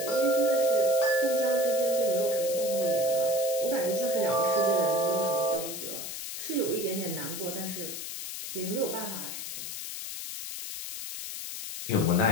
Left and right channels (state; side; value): noise; left; hiss, 7 dB below the sound